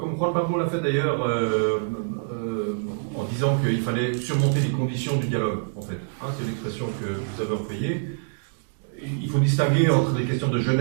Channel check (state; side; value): silent; left; digital silence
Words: Juan Pablo l'a fait d'ailleurs, en disant qu'il fallait surmonter les conditions du dialogue, en fait. C'est l'expression que vous avez employée. Il faut distinguer entre les questions de